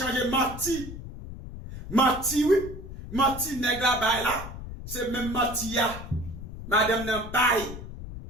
menti. Menti oui, menti nèg la bay là, c'est même menti ya. Madame nan bay.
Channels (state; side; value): noise; left; rumble, 11 dB below the sound